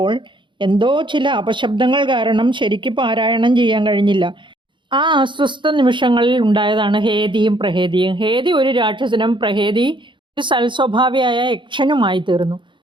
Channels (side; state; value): left; late; 0.23 ms